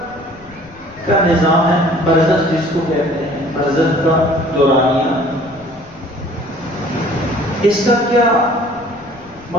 کا نظام ہے، برزخ جس کو کہتے ہیں، برزخ کا دورانیہ، اس کا کیا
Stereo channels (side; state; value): left; noise; rumble, 24 dB below the sound